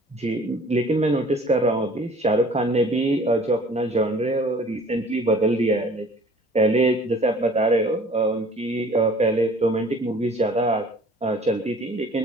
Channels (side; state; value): both; normal; correlation 0.51